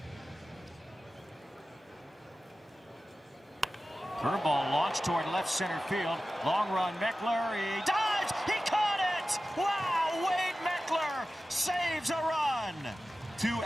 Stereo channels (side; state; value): both; normal; correlation 0.95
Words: Curveball launched toward left center field. Long run, Meckler. He dives. He caught it. Wow, Wade Meckler saves a run. 2